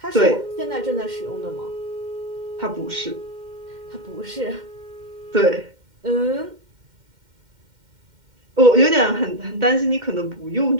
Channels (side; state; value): left; late; 2.1 ms